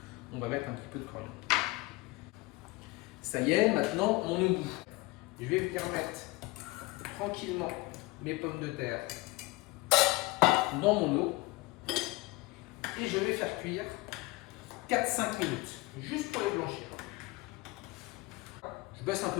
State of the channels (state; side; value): quieter; right; 21.7 dB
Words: On va mettre un petit peu de coriandre. Ça y est, maintenant mon eau bout. Je vais venir mettre tranquillement mes pommes de terre dans mon eau et je vais faire cuire 4-5 minutes, juste pour les blanchir. Je baisse un